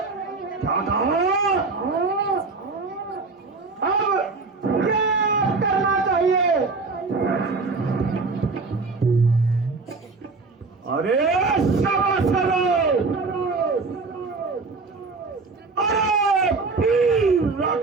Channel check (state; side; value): quieter; left; 4.1 dB